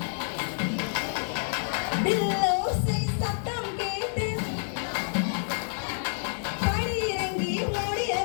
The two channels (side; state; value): right; silent; digital silence